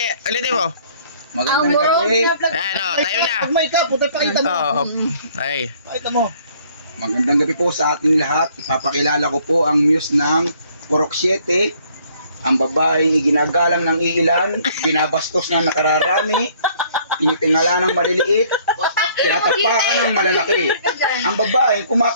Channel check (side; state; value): both; inverted; correlation -0.61